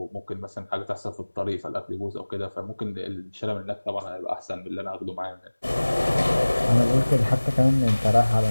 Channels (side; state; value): both; inverted; correlation -1.00